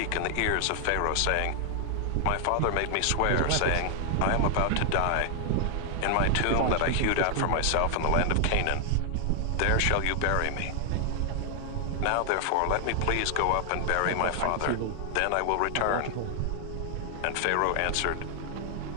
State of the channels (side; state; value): both; different; correlation 0.00